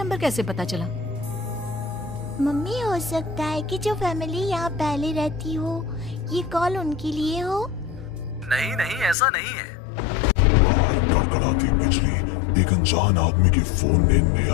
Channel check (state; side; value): drops out; right; at 9.2 s